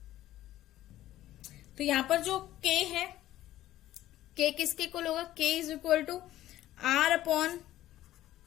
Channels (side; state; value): right; quieter; 14.2 dB